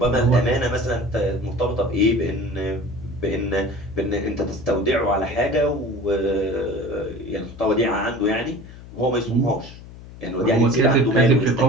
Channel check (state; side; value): noise; left; hum, 17 dB below the sound